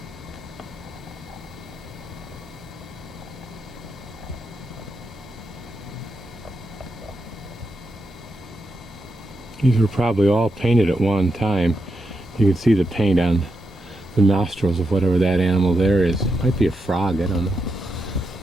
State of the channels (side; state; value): both; normal; correlation 0.85